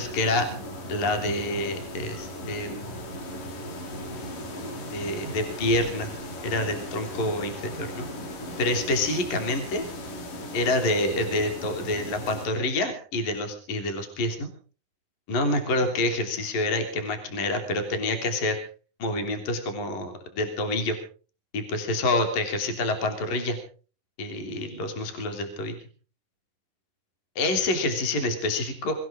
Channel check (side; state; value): right; late; 11 ms